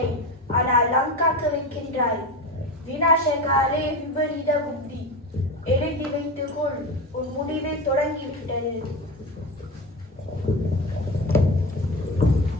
ஆனால் லங்காக்கு வைக்கின்றாய். விநாசகாலே விபரீத புத்தி. எழுதி வைத்துக்கொள், உன் முடிவை தொடங்கிவிட்டது.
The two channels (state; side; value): normal; both; correlation 0.24